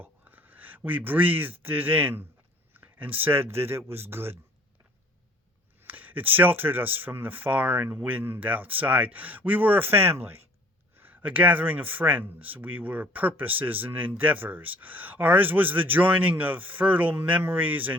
We breathed it in and said that it was good. It sheltered us from the foreign wind outside. We were a family, a gathering of friends. We were purposes and endeavors. Ours was the joining of fertile memories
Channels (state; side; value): normal; both; correlation 0.53